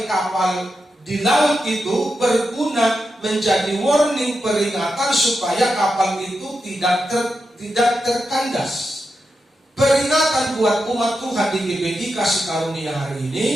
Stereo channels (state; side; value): normal; both; correlation 0.87